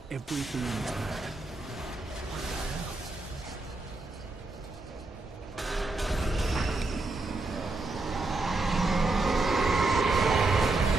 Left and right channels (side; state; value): left; quieter; 3.2 dB